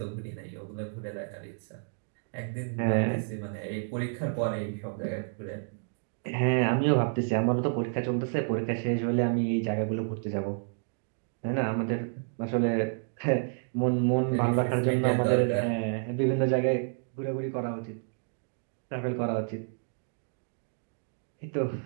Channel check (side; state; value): left; silent; digital silence